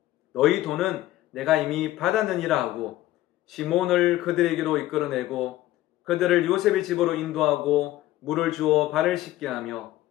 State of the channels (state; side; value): quieter; right; 15.4 dB